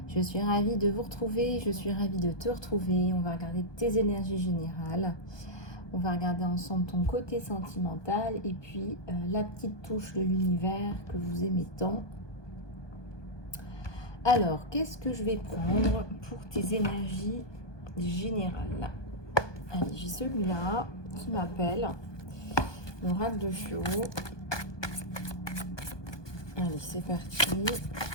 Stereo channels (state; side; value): late; right; 1.2 ms